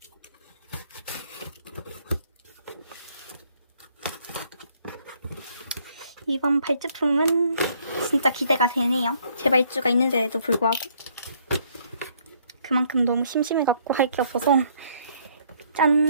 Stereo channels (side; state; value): both; inverted; correlation -0.66